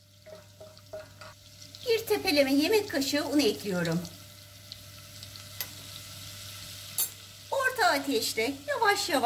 1 tepeleme yemek kaşığı un ekliyorum. Orta ateşte yavaş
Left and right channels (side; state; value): both; identical; correlation 1.00